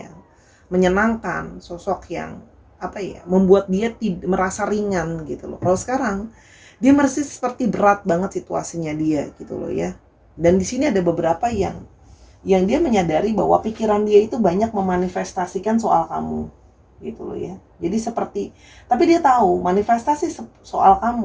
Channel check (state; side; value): identical; both; correlation 1.00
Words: menyenangkan, sosok yang membuat dia merasa ringan gitu loh. Kalau sekarang dia masih seperti berat banget situasinya dia gitu loh ya. Dan di sini ada beberapa yang dia menyadari bahwa pikiran dia itu banyak memanifestasikan soal kamu gitu loh ya. Jadi seperti, tapi dia tahu manifestasi soal